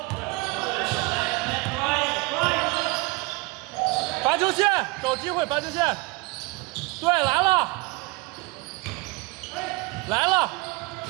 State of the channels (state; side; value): quieter; left; 24.8 dB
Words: 罚球线，找机会罚球线。对，来了。